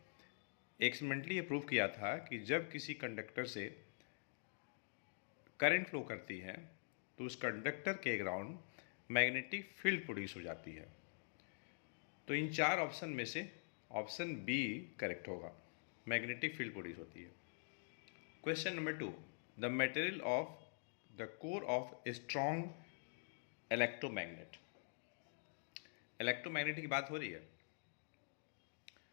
एक्सपेरिमेंटली ये प्रूव किया था कि जब किसी कंडक्टर से करंट फ्लो करती है तो उस कंडक्टर के अराउंड मैग्नेटिक फील्ड प्रोड्यूस हो जाती है। तो इन चार ऑप्शन में से ऑप्शन बी करेक्ट होगा, मैग्नेटिक फील्ड प्रोड्यूस होती है। Question number 2, the material of the core of a strong electromagnet. Electromagnet की बात हो रही है,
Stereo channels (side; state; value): right; silent; digital silence